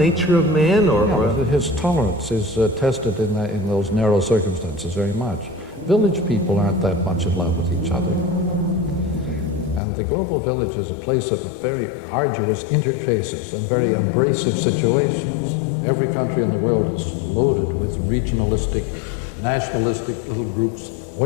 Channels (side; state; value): right; drops out; at 9.8 s